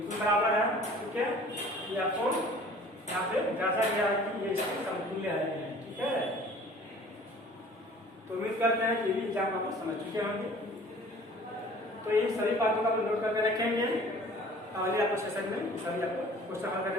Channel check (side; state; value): both; normal; correlation 0.48